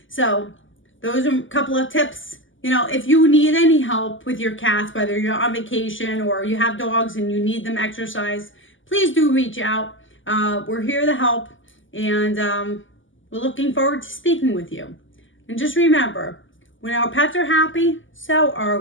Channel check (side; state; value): right; late; 0.57 ms